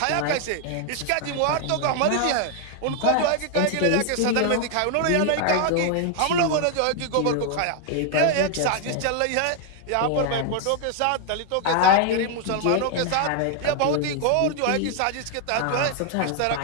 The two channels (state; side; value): different; both; correlation 0.00